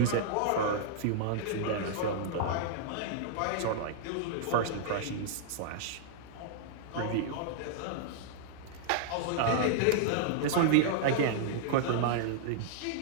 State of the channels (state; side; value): different; both; correlation -0.01